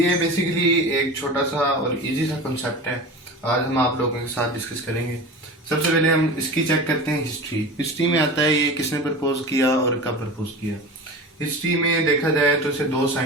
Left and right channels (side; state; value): both; normal; correlation 0.32